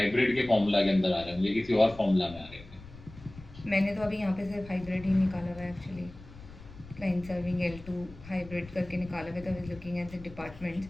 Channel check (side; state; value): left; noise; rumble, 18 dB below the sound